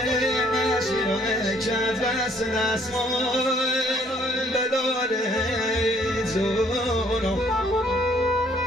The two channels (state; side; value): normal; both; correlation 0.62